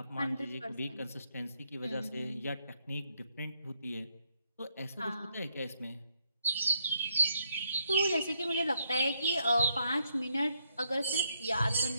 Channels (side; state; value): both; inverted; correlation -0.77